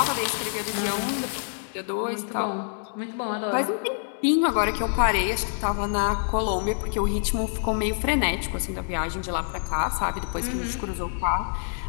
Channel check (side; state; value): right; silent; digital silence